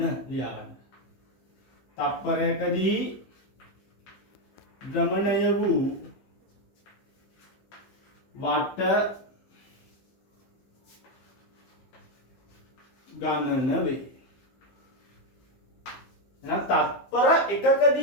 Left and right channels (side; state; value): right; late; 15 ms